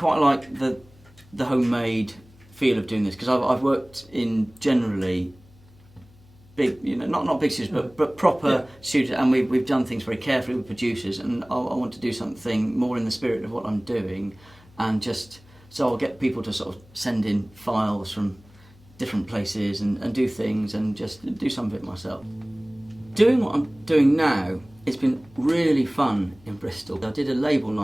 like the homemade feel of doing this, because I've worked in generally big, not big studios, but proper studios, and we've done things very carefully with producers, and I want to do something more in the spirit of what I'm doing, and so I'll get people to sort of send in files from different places and do things, and just do some of it myself. Doing what I'm doing now, it's been really fun in Bristol. I did a label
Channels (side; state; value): left; noise; hum, 26 dB below the sound